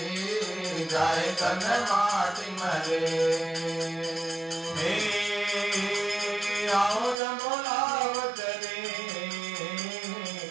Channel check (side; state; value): left; drops out; at 7.2 s